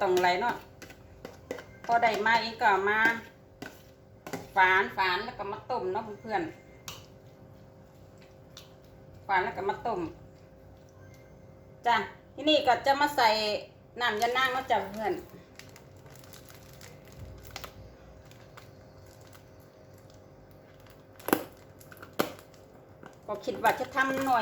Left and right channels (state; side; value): identical; both; correlation 1.00